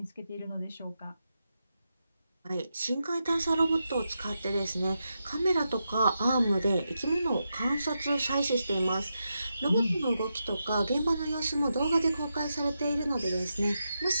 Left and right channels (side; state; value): both; inverted; correlation -0.87